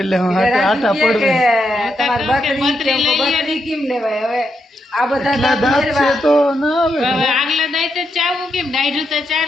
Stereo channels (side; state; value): both; normal; correlation 0.82